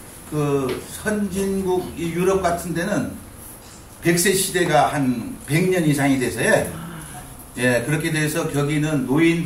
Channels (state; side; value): identical; both; correlation 1.00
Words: 선진국 이 유럽 같은 데는 100세 시대가 한 100년 이상이 돼서요. 예, 그렇게 돼서 거기는